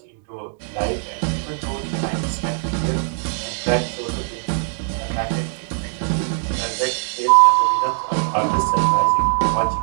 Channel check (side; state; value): left; silent; digital silence